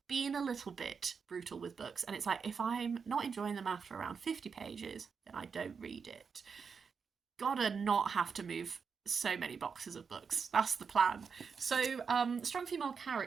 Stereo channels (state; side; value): quieter; left; 5.8 dB